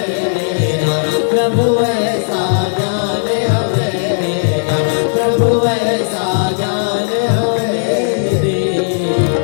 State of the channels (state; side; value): silent; right; digital silence